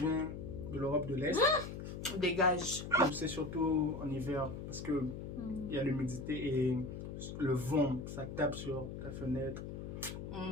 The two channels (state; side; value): noise; left; hum, 8 dB below the sound